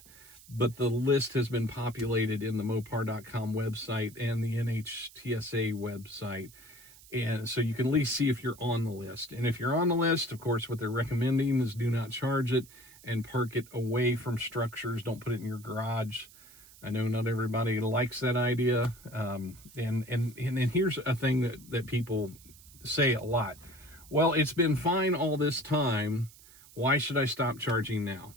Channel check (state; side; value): noise; right; hiss, 22 dB below the sound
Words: but the list has been populated in the Mopar.com website and the NHTSA website. And so you can at least see if you're on the list. And if you're on the list, of course, what they're recommending is do not charge it and park it away from structures. Don't put it in your garage. I know not everybody likes that idea. And here's a thing that people say a lot. Well, it's been fine all this time. Why should I stop charging now?